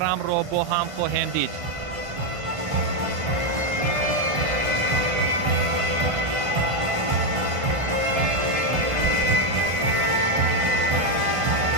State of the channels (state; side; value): late; left; 1.5 ms